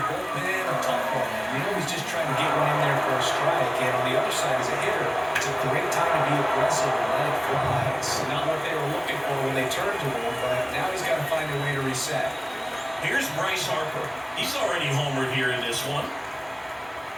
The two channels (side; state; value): both; identical; correlation 1.00